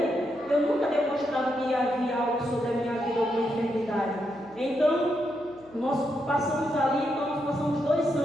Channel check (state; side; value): noise; right; hum, 28 dB below the sound